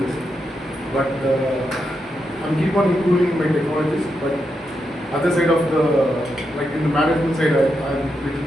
But I'm keep on improving my technologies. But other side of the, like in the management side, I'm little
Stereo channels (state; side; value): normal; both; correlation 0.84